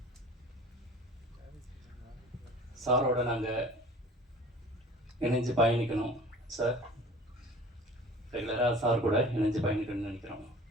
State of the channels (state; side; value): normal; both; correlation 0.44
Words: சாரோட நாங்கள் இணைஞ்சு பயணிக்கணும் சார். ரெகுலராக சார் கூட இணைஞ்சு பயணிக்கணும்னு நினைக்கிறோம்.